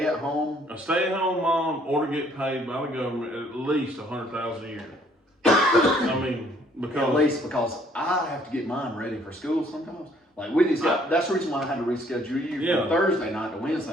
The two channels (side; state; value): both; normal; correlation 0.62